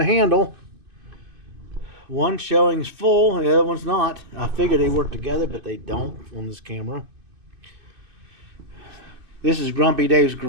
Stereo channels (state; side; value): late; left; 2.6 ms